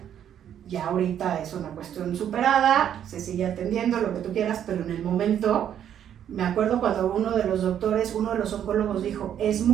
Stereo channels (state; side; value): quieter; left; 9.8 dB